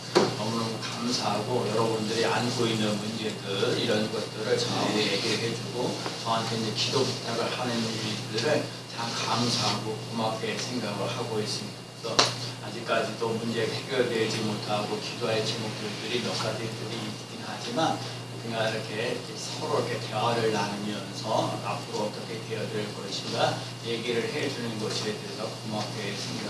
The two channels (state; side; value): identical; both; correlation 1.00